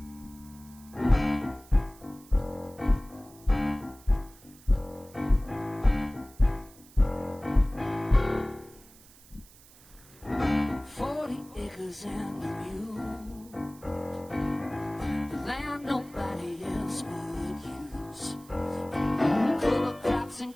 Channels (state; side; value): noise; right; hiss, 24 dB below the sound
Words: And the mule, the land nobody else would use. Cover crops and